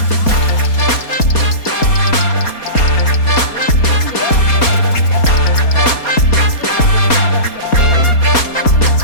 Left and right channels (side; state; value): right; late; 4.2 ms